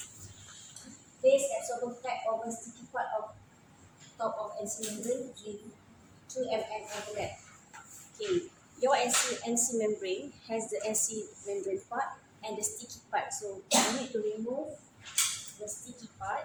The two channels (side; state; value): both; identical; correlation 1.00